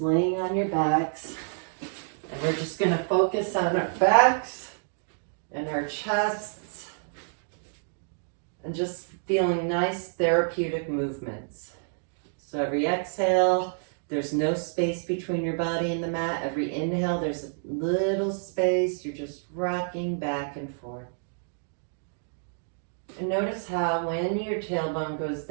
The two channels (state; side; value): silent; left; digital silence